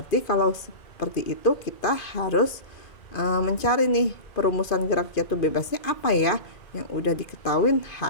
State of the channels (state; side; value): late; right; 2.5 ms